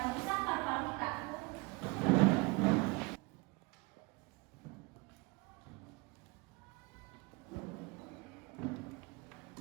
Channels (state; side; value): quieter; left; 26.0 dB